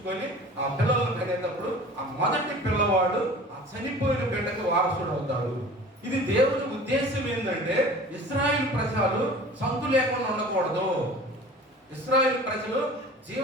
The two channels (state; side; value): normal; both; correlation 0.42